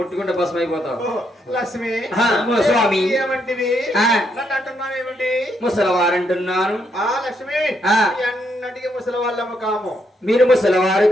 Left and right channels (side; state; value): both; normal; correlation 0.76